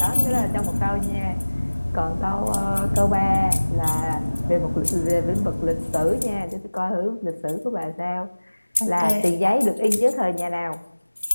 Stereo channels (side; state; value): both; inverted; correlation -1.00